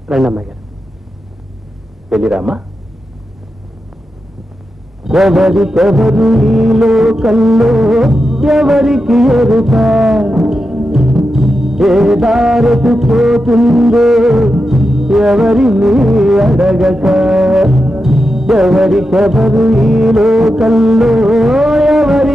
రండి అమ్మాయి గారు. వెళ్ళిరామ్మా. ఎవరికెవరు ఈ లోకంలో ఎవరికి ఎరుక, ఏ దారికి పోతుందో ఎవరిని అడగక. ఎవరికెవరు ఈ లోకంలో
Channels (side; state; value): both; normal; correlation 0.89